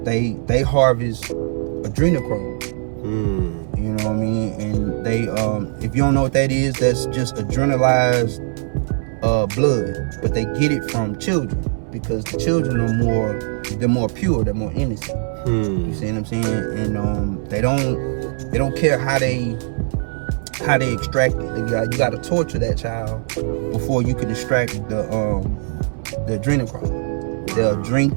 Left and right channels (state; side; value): silent; left; 65 dB below the other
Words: they harvest adrenochrome. You know what I mean? And they if you don't know what that is, that's just adrenalized blood, but they get it from children, because the children are more pure, they're more innocent. You see what I'm saying? And they don't care how they extract it. You got to torture that child before you can extract the adrenochrome. They'll